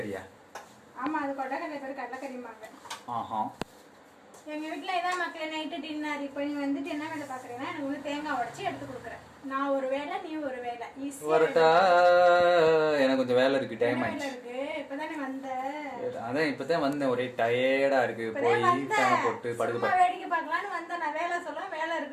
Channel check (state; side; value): identical; both; correlation 1.00